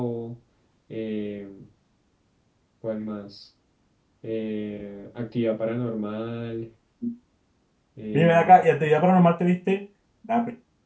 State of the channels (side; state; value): both; identical; correlation 1.00